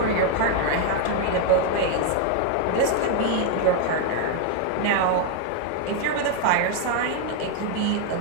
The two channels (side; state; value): both; different; correlation 0.00